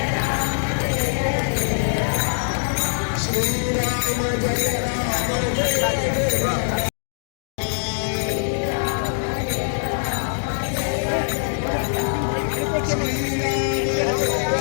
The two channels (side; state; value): right; silent; digital silence